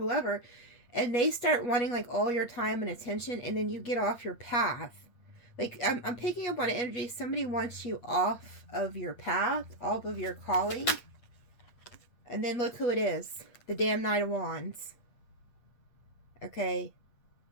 and they start wanting like all your time and attention, and then you get off your path. Like, I'm picking up on energy. Somebody wants you off of your path, off of your calling. And then look who it is. The damn Knight of Wands. Okay.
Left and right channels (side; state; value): right; late; 8.3 ms